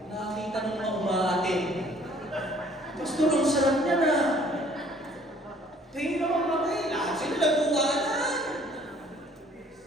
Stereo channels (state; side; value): normal; both; correlation 0.57